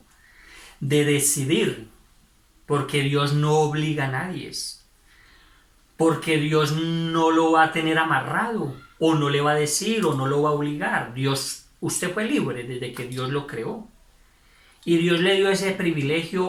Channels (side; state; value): both; identical; correlation 1.00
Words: de decidir, porque Dios no obliga a nadie, porque Dios no lo va a tener amarrado, o no le va a decir, o no lo va a obligar. Dios, usted fue libre desde que Dios lo creó. Y Dios le dio ese